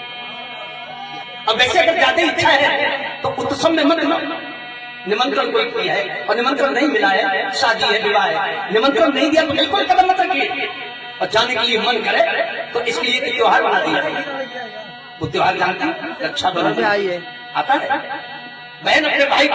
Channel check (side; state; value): both; identical; correlation 1.00